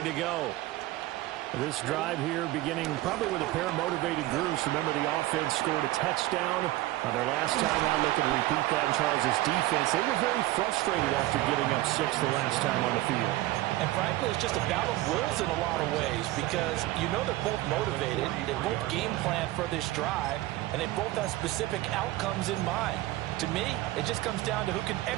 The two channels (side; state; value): left; quieter; 17.1 dB